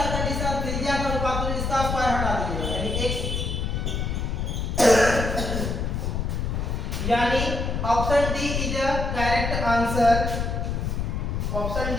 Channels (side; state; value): left; noise; rumble, 1 dB below the sound